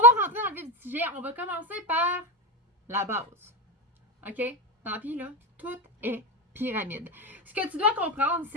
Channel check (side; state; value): both; normal; correlation 0.14